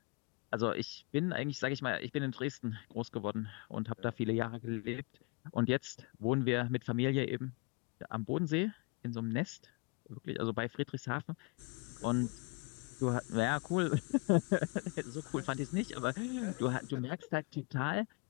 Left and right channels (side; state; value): right; quieter; 27.9 dB